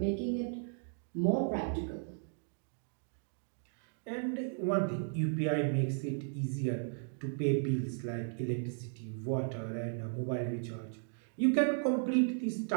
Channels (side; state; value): left; silent; digital silence